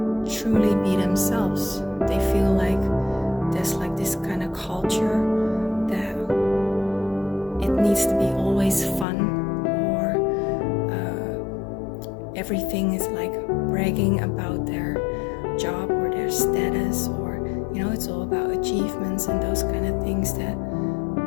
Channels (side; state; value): right; drops out; at 9.1 s